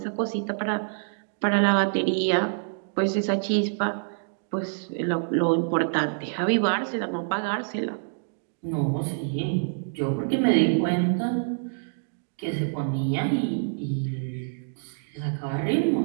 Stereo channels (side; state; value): left; silent; digital silence